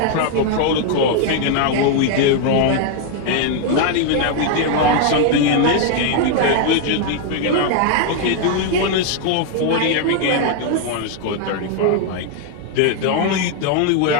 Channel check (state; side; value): different; both; correlation 0.00